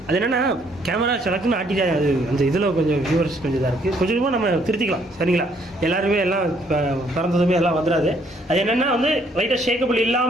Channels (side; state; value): both; normal; correlation 0.66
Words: அது என்னென்னா கேமரா செலக்ட்னு ஆட்டிட்டே அது அந்த இதில் கொஞ்சம் வியூவர்ஸ் கொஞ்சம் இதாக இருக்குது, கொஞ்சமாக நம்ம திருத்திக்கலாம் சரிங்களா. எல்லாருமே எல்லாம் பிறந்ததுமே எல்லாம் வந்துடாது. அது என்னென்னா வந்து லைட்டாக ஷேக்கபிள்